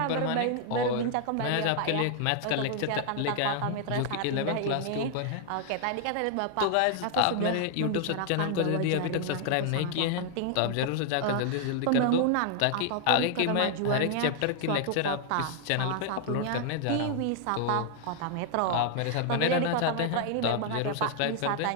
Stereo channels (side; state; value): both; different; correlation 0.00